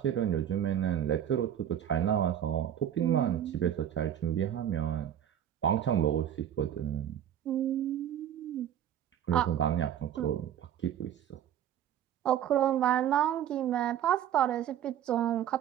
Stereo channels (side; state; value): left; quieter; 10.3 dB